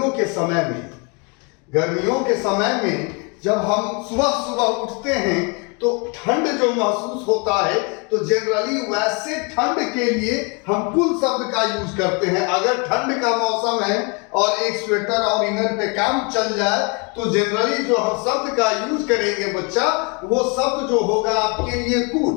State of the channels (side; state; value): right; quieter; 32.6 dB